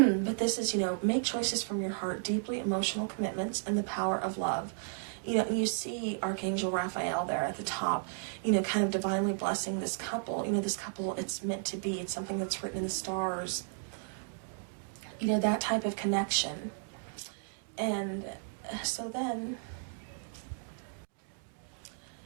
this is, make choices from your heart, deeply emotional commitments, and the power of love. You know, and you see Archangel Raphael there at the top, you know, kind of divinely blessing this couple. You know, this couple, it's meant to be. It's something that's written in the stars. You know, that type of connection. And so then,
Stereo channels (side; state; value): left; silent; digital silence